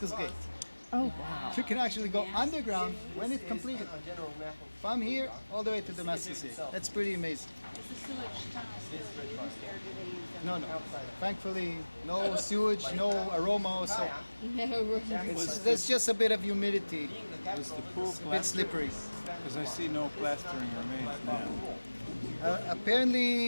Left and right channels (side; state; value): both; inverted; correlation -1.00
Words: Gate. Oh, wow. You can actually go underground when it's completed. From here all the way to Damascus Gate. That's pretty amazing. Is the sewage tunnel still used, or do they use them? No. Thankfully, no sewage, no aroma, so No, there's just a bit of humidity. Was the pool It's a bit plastered? slippery. Because I see no plastering remains now.